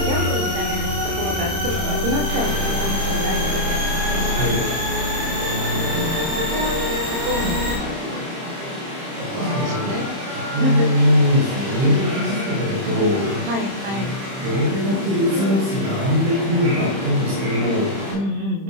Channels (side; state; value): left; late; 30 ms